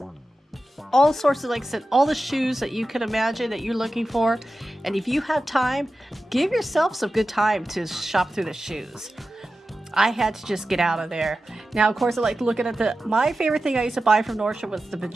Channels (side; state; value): both; normal; correlation 0.93